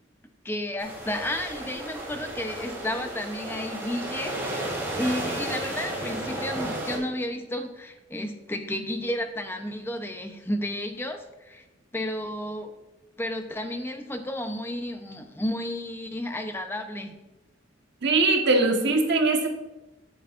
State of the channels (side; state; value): both; normal; correlation 0.33